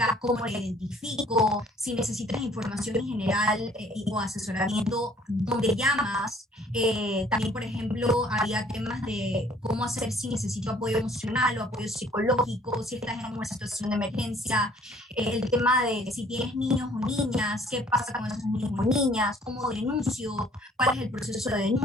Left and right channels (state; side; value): normal; both; correlation 0.57